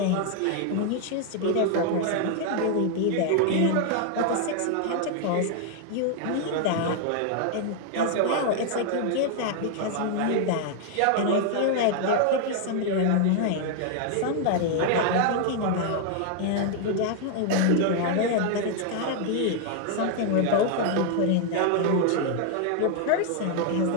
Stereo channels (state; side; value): different; both; correlation 0.00